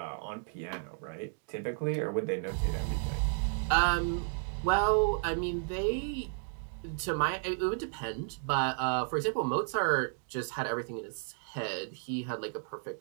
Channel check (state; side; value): silent; left; digital silence